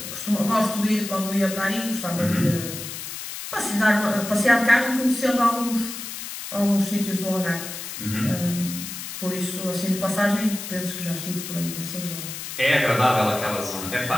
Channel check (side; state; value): left; noise; hiss, 8 dB below the sound